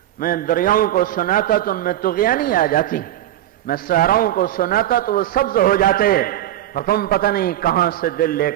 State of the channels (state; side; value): quieter; left; 13.1 dB